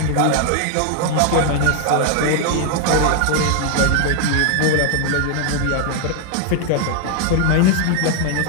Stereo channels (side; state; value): both; different; correlation 0.00